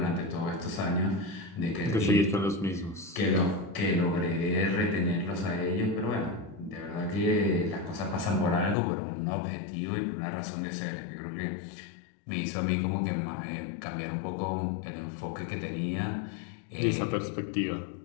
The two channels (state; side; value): drops out; right; at 8.8 s